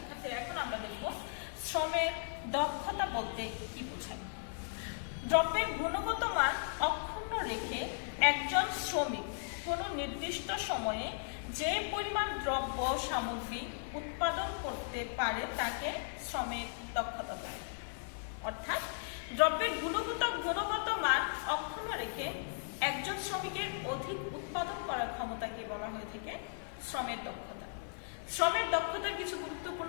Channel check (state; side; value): silent; right; 53 dB below the other